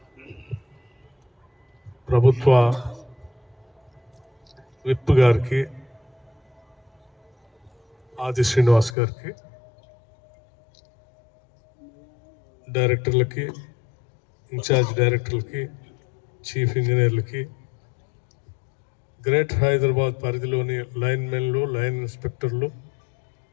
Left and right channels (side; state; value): right; drops out; at 9.0 s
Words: ప్రభుత్వ విప్ గారికి, ఆది శ్రీనివాస్ గారికి, డైరెక్టర్లకి, ఇన్ఛార్జ్ డైరెక్టర్లకి, చీఫ్ ఇంజనీర్లకి, గ్రేటర్ హైదరాబాద్ పరిధిలోని లైన్మెన్లు, లైన్ ఇన్స్పెక్టర్లు,